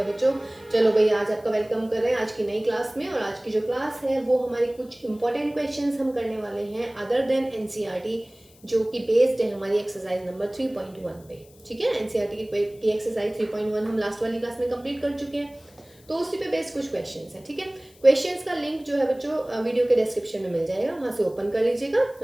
बच्चों। चलो भाई, आज आपका वेलकम कर रहे हैं आज की नई क्लास में। और आज की जो क्लास है वो हमारी कुछ इंपॉर्टेंट क्वेश्चंस हम करने वाले हैं अदर देन एनसीईआरटी, जो कि बेस्ड है हमारी एक्सरसाइज नंबर 3.1 पे। ठीक है, एनसीईआरटी की एक्सरसाइज 3.1 हम लास्ट वाली क्लास में कंप्लीट कर चुके हैं, तो उसी पे बेस्ड कुछ क्वेश्चंस हैं। ठीक है, क्वेश्चंस का लिंक जो है बच्चों वीडियो के डिस्क्रिप्शन में मिल जाएगा, वहाँ से ओपन कर लीजिएगा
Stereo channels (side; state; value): left; noise; hiss, 27 dB below the sound